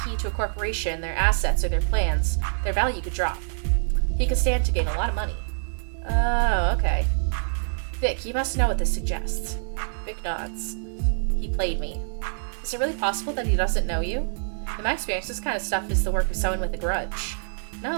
to a corporation, their assets or their plans, their value could drop. He could stand to gain a lot of money. Oh, okay. Vic, you must know what this suggests. Vic nods. He played me. Is it really possible that he doesn't know you? In my experience, this kind of stuff is the work of someone with a grudge.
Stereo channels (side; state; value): left; silent; digital silence